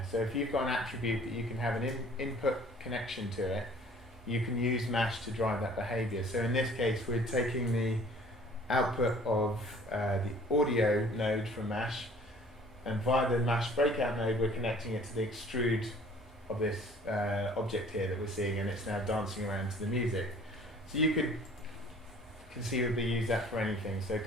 So if you've got an attribute that you can have an input connection to it, you can use Mesh to drive that behavior. So in this case, we're taking the output of the audio node from Mesh, and via the Mesh breakout node, we're connecting it to the extrude of this object here that we're seeing, and it's now dancing around to the music. So you could conceivably use that for anything. So it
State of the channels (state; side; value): normal; both; correlation 0.52